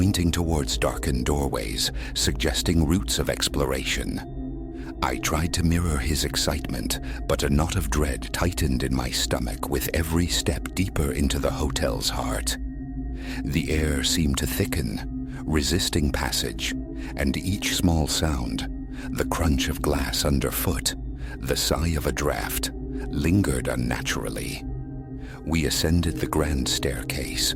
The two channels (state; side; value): identical; both; correlation 1.00